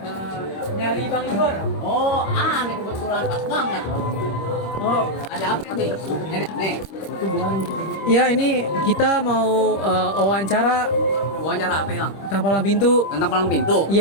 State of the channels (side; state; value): right; late; 26 ms